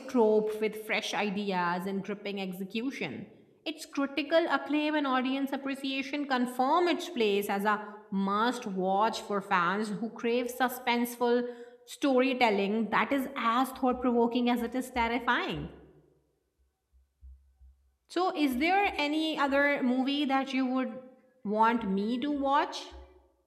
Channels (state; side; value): identical; both; correlation 1.00